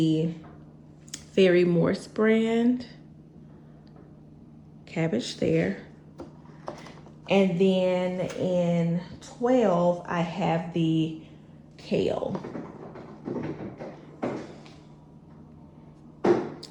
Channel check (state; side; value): identical; both; correlation 1.00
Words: Fairy Morse brand. Cabbage there. And then in 12, I have the kale.